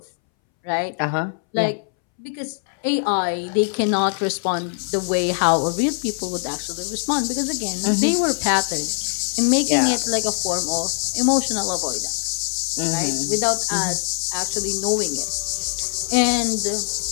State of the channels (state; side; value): silent; right; 63 dB below the other